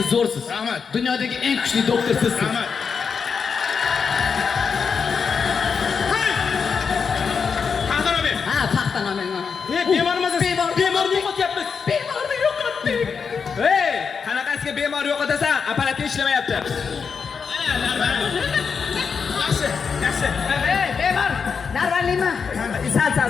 zo'rsiz. Rahmat. Dunyodagi eng kuchli doktor sizsiz. Rahmat. Taxtani ber. Ha, taxtani men. Bemormiz. Bemorni yo'qotyapmiz. Bemorni yo'qotdik. Hey, qanaqasiga bemor yo'qotasan? Apparat ishlamayapti. Yaxshi, yaxshi. Hey, bemor. Narvalimi? Sal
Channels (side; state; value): right; quieter; 5.9 dB